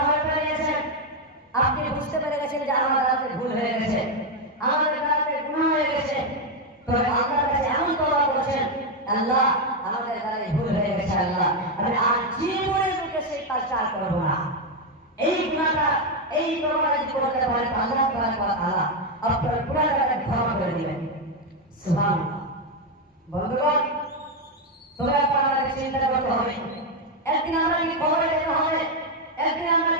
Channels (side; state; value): both; normal; correlation 0.04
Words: হয়ে করে নিয়েছেন, আপনি বুঝতে পেরে গেছেন যে আমার দ্বারাতে ভুল হয়ে গেছে, আমাদের দ্বারাতে গুনাহ হয়ে গেছে, তবে আল্লাহর কাছে এমন তওবা করেছেন, আল্লাহ আমাদের দ্বারাই ভুল হয়ে গেছে, আল্লাহ আমি আর জীবনে মুখে সেই কাজটা আর করবো না। এই গুনাহটা, এই তওবা যদি করতে পারেন, আল্লাহ তাবারক ওয়া তাআলা আপনার গুনাহটাকে ক্ষমা করে দিবেন। সুবহানাল্লাহ। বন্ধুগণ, তবে আপনাকে চিন্তা করতে হবে, একদিন আমাকে কবরে যেতে হবে, একদিন